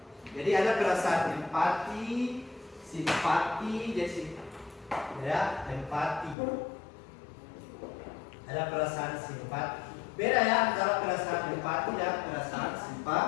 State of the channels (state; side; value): drops out; right; at 6.4 s